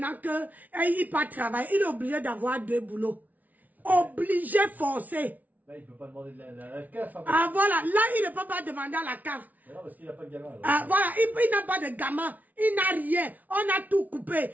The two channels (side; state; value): left; late; 0.076 ms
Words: qu'il pas travailler. Il est obligé d'avoir 2 boulots. Obligé, forcé. Là, il ne peut pas demander de la CAF. Hein, ah voilà, là il ne peut pas demander à la CAF. Non, parce qu'il n'a pas de gamin. Voilà, il n'a pas de gamin, il n'a rien, on a tout coupé.